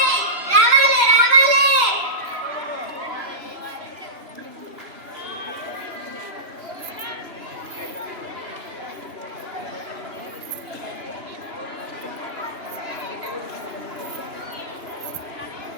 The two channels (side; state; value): left; late; 3.0 ms